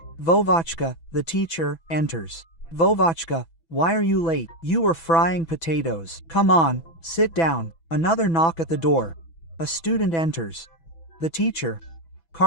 Vovachka, the teacher, enters. "Vovachka, why are you late? You were frying potatoes. Come on, sit down." Another knock at the door. A student enters. The teacher,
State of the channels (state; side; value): late; right; 6.0 ms